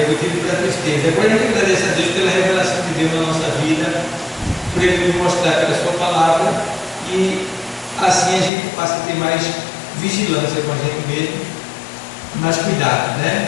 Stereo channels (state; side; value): drops out; right; at 8.5 s